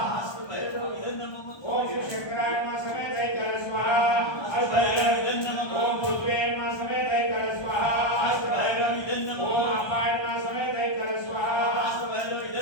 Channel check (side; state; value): right; late; 1.2 ms